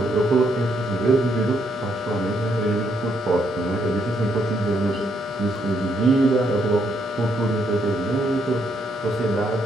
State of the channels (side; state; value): both; normal; correlation 0.74